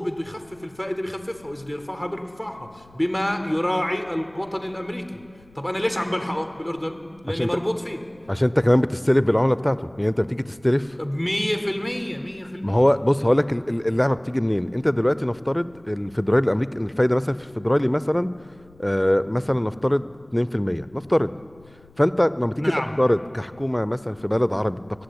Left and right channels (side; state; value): left; noise; rumble, 28 dB below the sound